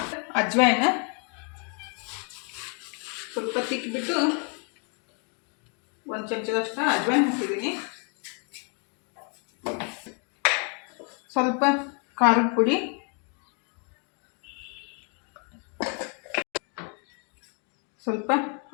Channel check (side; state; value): right; quieter; 38.1 dB